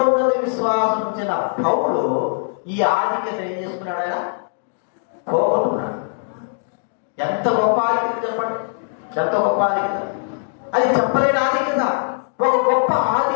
విశ్వాసం ఉంచిన పౌలు ఈ ఆధిక్యత ఏం చేసుకున్నాడు? ఆయన పోగొట్టున్నాడు. ఎంత గొప్ప ఆధిక్యత చెప్పండి, ఎంత గొప్ప ఆధిక్యత! అది చెప్పలేని ఆధిక్యత. ఒక గొప్ప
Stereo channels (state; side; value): silent; right; digital silence